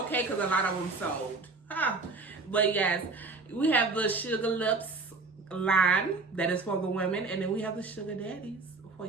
because a lot of them sold. But yes, we have the Sugar Lips line that is for the women, and then we have the Sugar Daddies for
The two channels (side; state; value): left; quieter; 3.8 dB